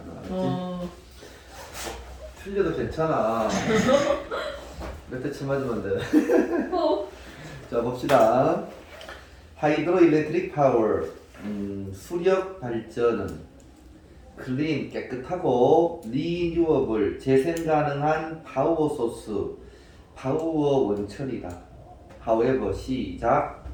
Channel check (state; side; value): identical; both; correlation 1.00